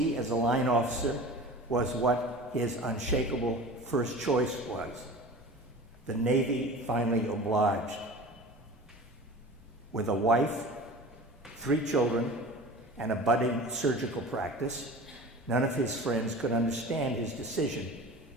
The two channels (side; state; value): both; normal; correlation 0.37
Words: as a line officer was what his unshakable first choice was. The Navy finally obliged. With a wife, 3 children, and a budding surgical practice, none of his friends could understand his decision